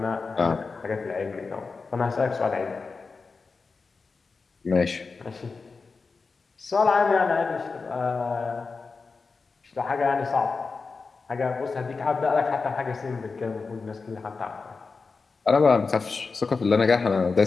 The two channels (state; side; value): quieter; right; 4.5 dB